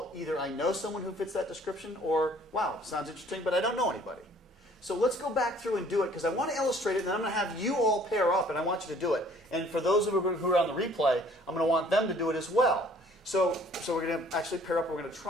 either I know someone who fits that description, or, wow, sounds interesting, but I don't know anybody. So let's go back through and do it, because I want to illustrate it, and then I'm going to have you all pair up, and I want you to do it. And for those of you who are on the replay, I'm going to want them to do it as well. So we're going to actually pair up, and we're going to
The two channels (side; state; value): both; normal; correlation 0.56